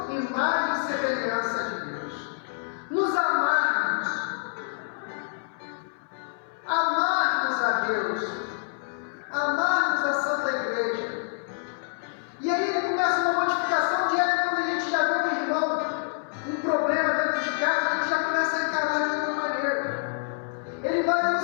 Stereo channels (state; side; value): silent; right; 60 dB below the other